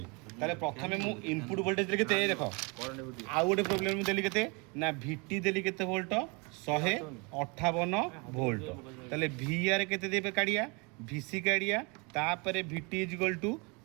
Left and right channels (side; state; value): left; quieter; 30.3 dB